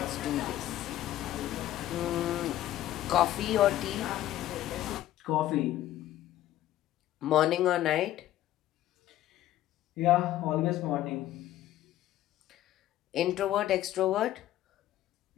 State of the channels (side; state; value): right; quieter; 13.5 dB